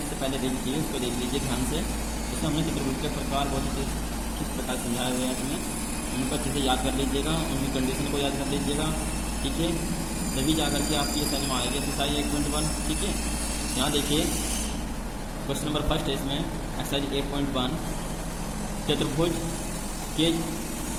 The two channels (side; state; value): both; identical; correlation 1.00